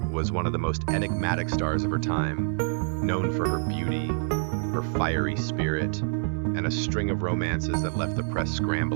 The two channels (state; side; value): silent; left; 59 dB below the other